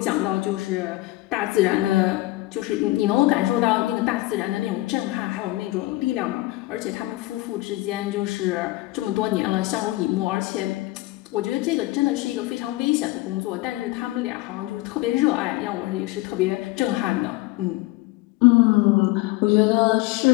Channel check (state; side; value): quieter; right; 19.2 dB